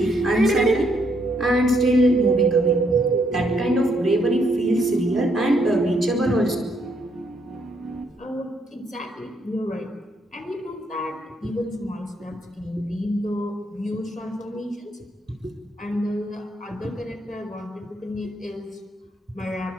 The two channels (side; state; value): both; normal; correlation 0.73